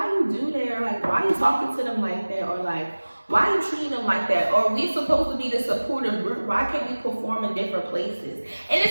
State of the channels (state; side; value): inverted; both; correlation -1.00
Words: you do that? Or like, why you talking to them like that? Or like, why you treating them like that? Or we supposed to be the supportive group. Why can't we perform in different places? And